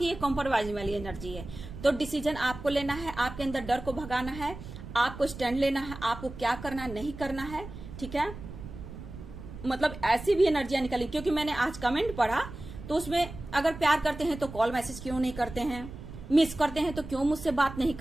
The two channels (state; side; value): noise; right; rumble, 12 dB below the sound